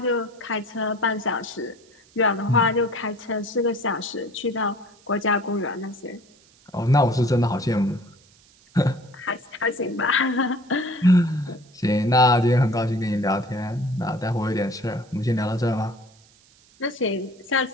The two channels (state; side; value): noise; right; hiss, 29 dB below the sound